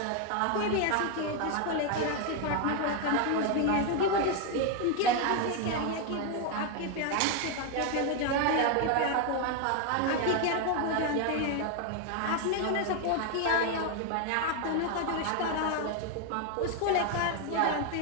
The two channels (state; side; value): different; both; correlation 0.01